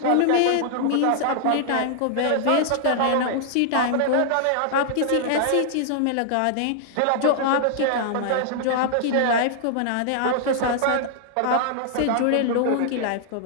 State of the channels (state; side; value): different; both; correlation -0.01